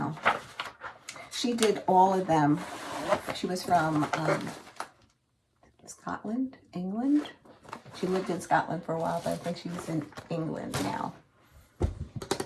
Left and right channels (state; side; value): identical; both; correlation 1.00